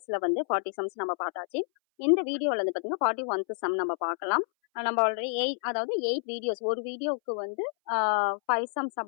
வந்து 40 சம்ஸ் நம்ம பார்த்தாச்சு. இந்த வீடியோவில் வந்து பார்த்தீங்கன்னா 41th சம் நம்ம பார்க்கலாம். நம்ம ஆல்ரெடி 8 வீடியோஸ், ஒரு வீடியோவுக்கு வந்து 5 சம்ஸ்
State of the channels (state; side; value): silent; right; 59 dB below the other